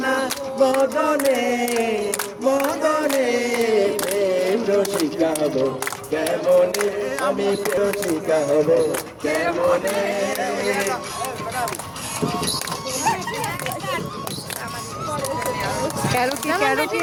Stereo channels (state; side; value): identical; both; correlation 1.00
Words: না মদনে মদনে প্রেম রসিকা হব কেমনে আমি রসিকা হব কেমনে ক্যারোকি